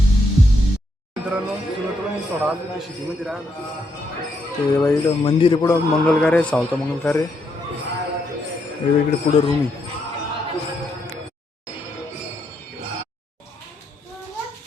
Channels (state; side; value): normal; both; correlation 0.78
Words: शेतीमध्ये राहा ते इकडं मंदिर आहे पुढं मंगलकार्य सावता मंगलकार्य इकडे पुढं रूम आहे.